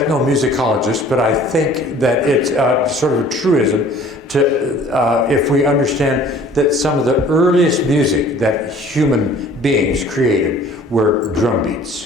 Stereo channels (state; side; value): normal; both; correlation 0.51